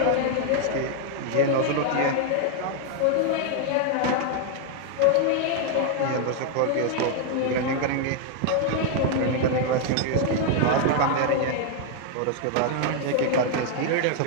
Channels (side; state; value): both; different; correlation 0.00